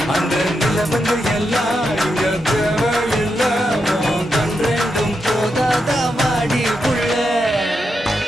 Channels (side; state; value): both; normal; correlation 0.85